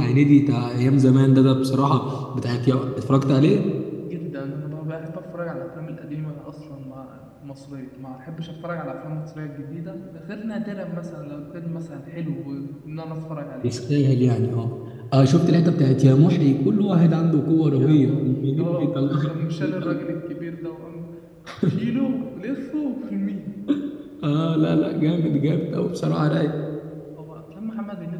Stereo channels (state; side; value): identical; both; correlation 1.00